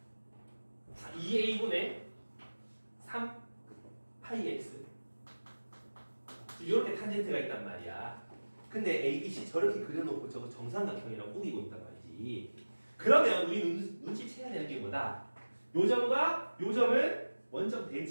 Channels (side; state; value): both; inverted; correlation -1.00